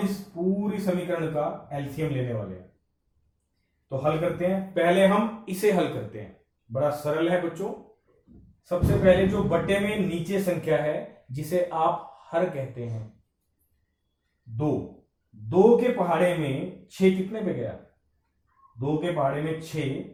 इस पूरी समीकरण का एलसीएम लेने वाले हैं, तो हल करते हैं। पहले हम इसे हल करते हैं, बड़ा सरल है बच्चों। सबसे पहले जो बट्टे में नीचे संख्या है जिसे आप हर कहते हैं, 2 के पहाड़े में 6 कितने पे गया, 2 के पहाड़े में 6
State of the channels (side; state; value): both; identical; correlation 1.00